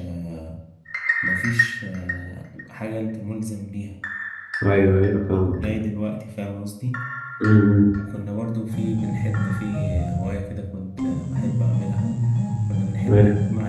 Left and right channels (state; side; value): identical; both; correlation 1.00